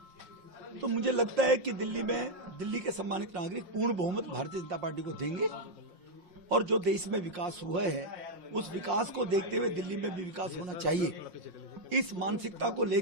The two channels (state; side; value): late; left; 5.6 ms